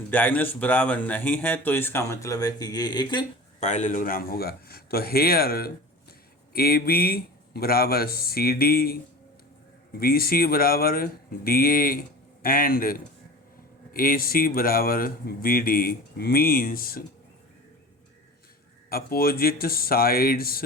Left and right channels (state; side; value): normal; both; correlation 0.35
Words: डायगोनल्स बराबर नहीं है, तो इसका मतलब है कि ये एक पैरेललोग्राम होगा। तो हेयर ए बी बराबर सी डी, बी सी बराबर D A and A C बराबर B D means opposite sides